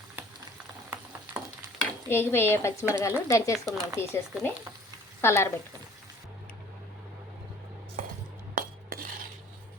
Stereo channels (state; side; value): normal; both; correlation 0.52